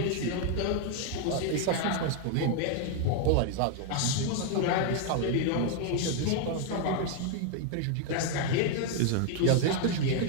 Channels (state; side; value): different; both; correlation 0.00